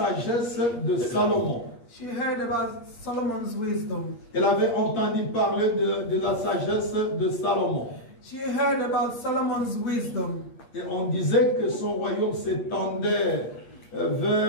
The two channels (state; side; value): late; right; 8.4 ms